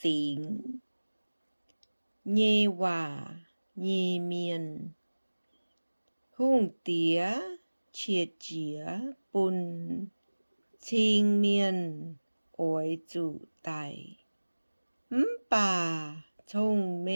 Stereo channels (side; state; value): both; inverted; correlation -1.00